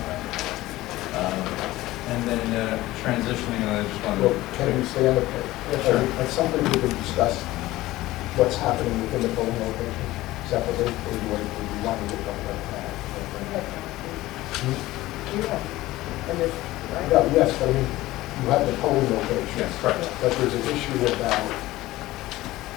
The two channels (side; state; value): right; quieter; 17.4 dB